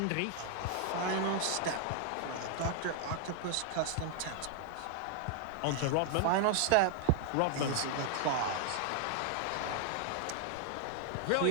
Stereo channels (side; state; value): both; different; correlation 0.00